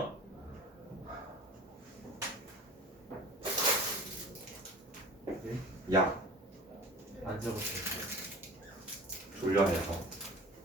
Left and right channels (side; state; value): both; normal; correlation 0.40